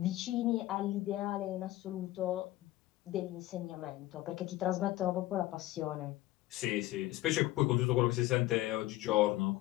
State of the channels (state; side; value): quieter; right; 16.8 dB